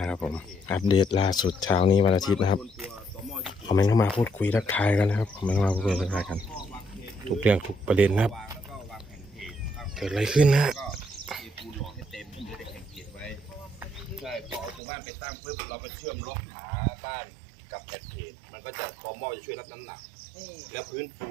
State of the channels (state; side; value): drops out; left; at 14.8 s